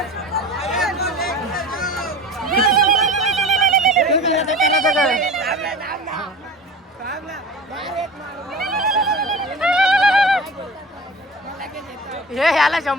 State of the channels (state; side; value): normal; both; correlation 0.35